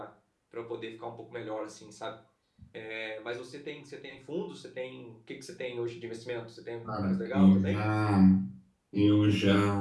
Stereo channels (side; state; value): both; identical; correlation 1.00